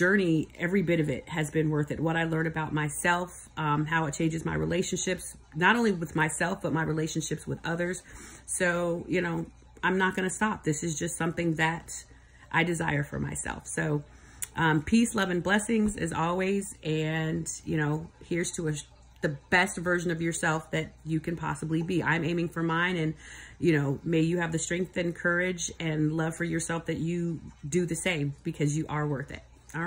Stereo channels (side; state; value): both; identical; correlation 1.00